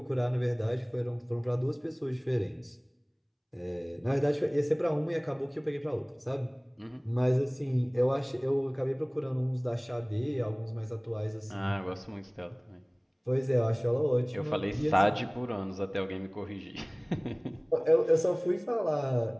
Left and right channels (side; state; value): both; identical; correlation 1.00